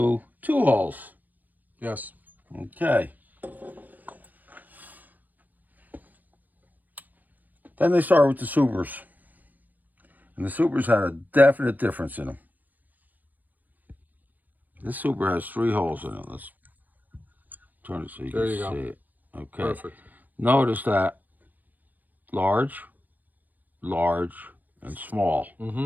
2 holes. Yes. Okay. Then they started with the Supers. And the Supers had a definite difference in them. This Super has 3 holes in it. Let's turn it so you There can you go. see it. Okay. Perfect. Notice that large, and small.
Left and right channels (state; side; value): late; left; 0.085 ms